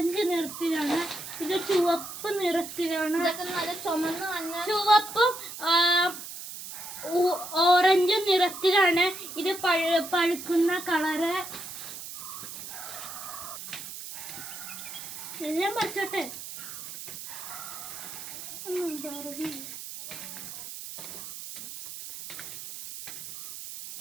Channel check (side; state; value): right; noise; hiss, 10 dB below the sound